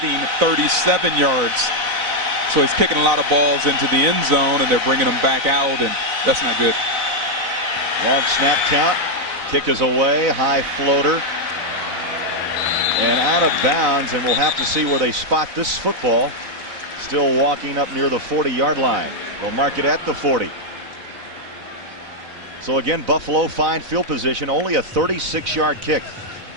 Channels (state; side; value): late; left; 4.0 ms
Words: 37 yards. So he's kicking a lot of balls into the end zone, and they're bringing them back out, and that's not good. Long snap count. Kick is away. High floater. And out of bounds, and we'll have to see where they spot this football. Still walking up near the 40-yard line. They'll mark it at the 40. So again, Buffalo fine field position, only a 36-yard kick.